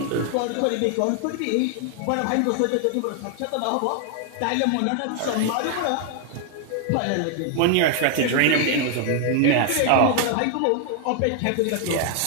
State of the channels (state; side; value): different; both; correlation 0.00